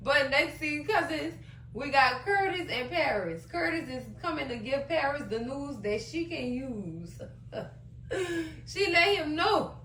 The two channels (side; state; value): both; identical; correlation 1.00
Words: But next scene, cousins, we got Curtis and Paris. Curtis is coming to give Paris the news that she can use. She let him know.